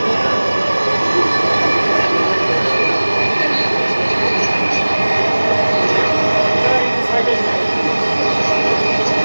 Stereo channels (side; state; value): both; inverted; correlation -1.00